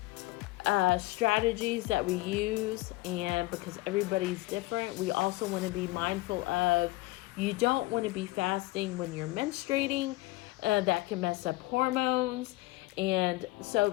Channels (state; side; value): quieter; right; 20.2 dB